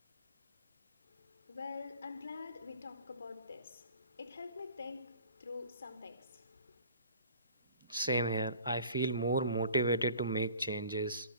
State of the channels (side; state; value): both; inverted; correlation -0.47